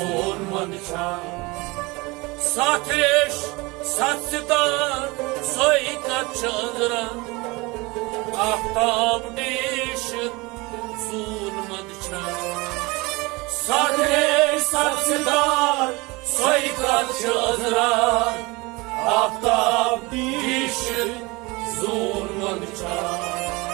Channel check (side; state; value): left; quieter; 24.3 dB